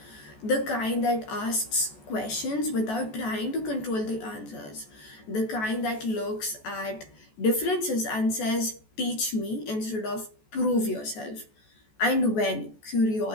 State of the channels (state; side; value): late; right; 14 ms